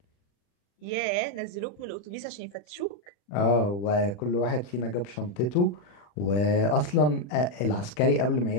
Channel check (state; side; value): late; right; 40 ms